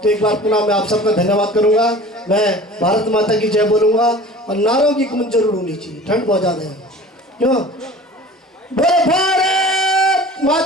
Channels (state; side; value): normal; both; correlation 0.42